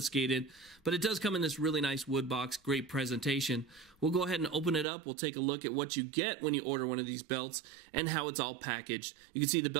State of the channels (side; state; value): left; drops out; at 4.9 s